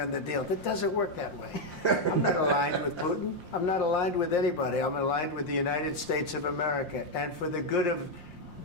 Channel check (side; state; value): right; late; 5.6 ms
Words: the deal?" That doesn't work that way. I'm not aligned with Putin. I'm not aligned with anybody. I'm aligned with the United States of America and for the good of